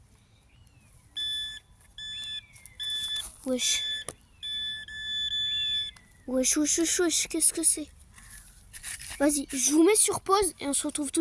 Wesh. Wesh, wesh, wesh, wesh. Qu'est-ce que c'est? Vas-y, je vous mets sur pause et on se retrouve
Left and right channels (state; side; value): identical; both; correlation 1.00